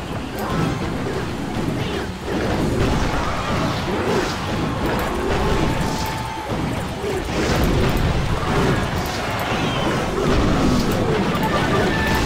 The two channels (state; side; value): identical; both; correlation 1.00